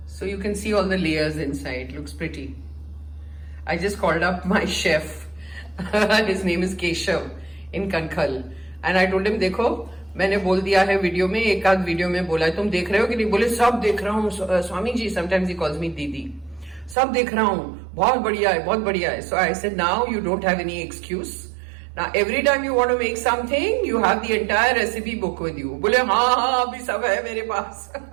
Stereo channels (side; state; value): left; drops out; at 16.9 s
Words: So you can see all the layers inside. Looks pretty. I just called up my chef. His name is Keshav in Kankhal. And I told him, देखो मैंने बोल दिया है video में, एक आध video में बोला है, तुम देख रहे हो कि नहीं? बोले सब देख रहा हूँ Swami ji. Sometimes he calls me दीदी. सब देख रहा हूँ, बहुत बढ़िया है, बहुत बढ़िया है. So I said, now you don't have any excuse. Now every time you want to make something, you have the entire recipe book with you. बोले हाँ अभी सब है मेरे पास.